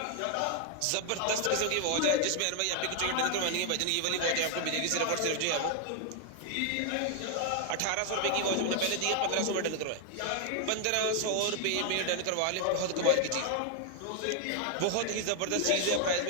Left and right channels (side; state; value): both; different; correlation 0.00